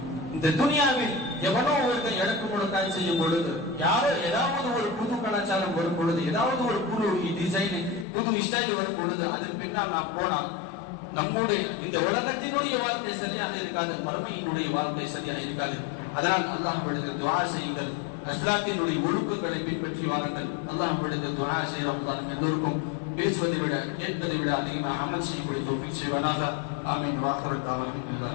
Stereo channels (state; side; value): drops out; right; at 8.1 s